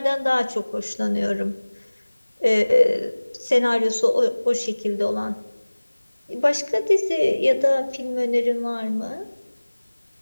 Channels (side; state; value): both; inverted; correlation -1.00